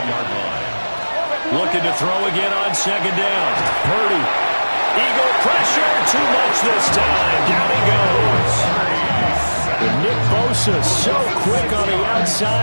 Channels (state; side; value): inverted; both; correlation -1.00